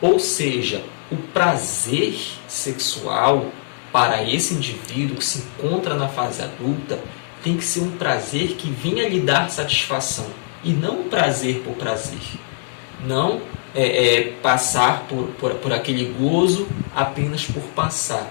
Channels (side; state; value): right; silent; digital silence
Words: Ou seja, o prazer sexual para esse indivíduo que se encontra na fase adulta tem que ser um prazer que venha lhe dar satisfação e não um prazer por prazer. Não passar por aquele gozo apenas por